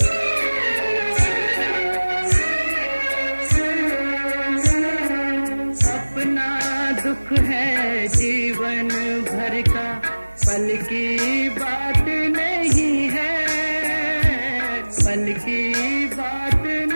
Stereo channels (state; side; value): inverted; both; correlation -1.00